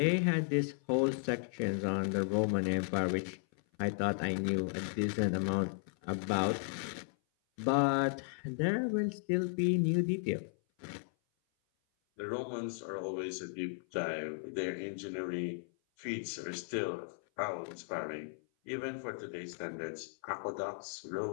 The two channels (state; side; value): silent; right; 54 dB below the other